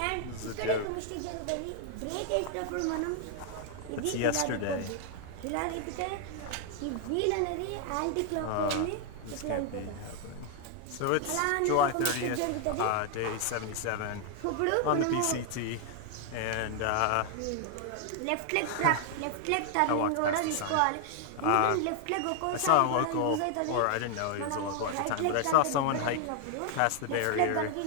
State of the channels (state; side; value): different; both; correlation 0.00